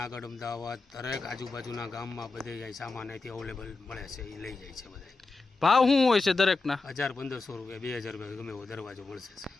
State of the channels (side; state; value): right; quieter; 3.9 dB